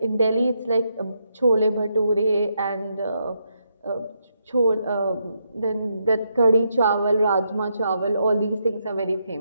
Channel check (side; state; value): both; inverted; correlation -0.79